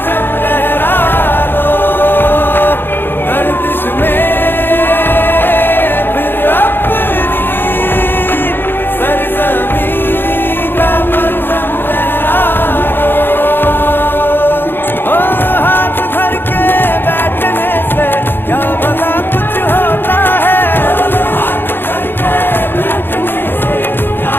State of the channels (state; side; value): late; right; 0.10 ms